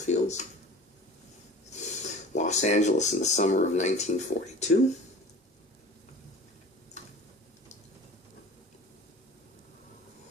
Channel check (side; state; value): both; normal; correlation 0.41